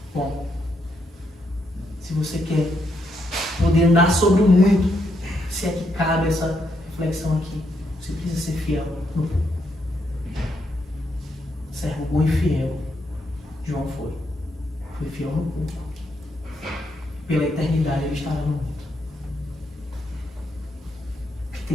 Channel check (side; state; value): both; normal; correlation 0.78